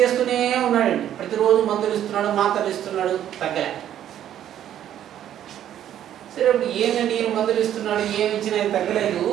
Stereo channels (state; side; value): quieter; left; 10.9 dB